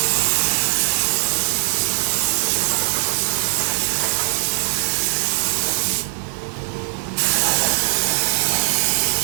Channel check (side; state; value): left; silent; digital silence